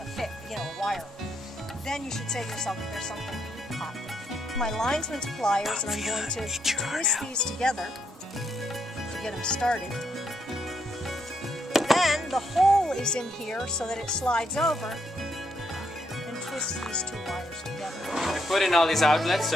wire, then you should say to yourself, there's something hot. My linesman's pliers, and I'm going to twist these together to get them started. Then the hole is in here so that it slides over, and twist these two wires together. I put in all these outlets,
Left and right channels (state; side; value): normal; both; correlation 0.77